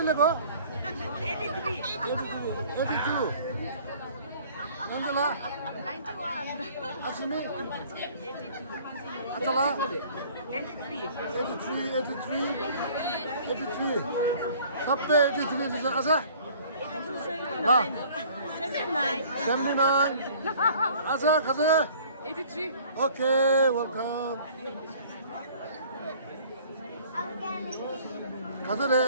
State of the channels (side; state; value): both; inverted; correlation -0.52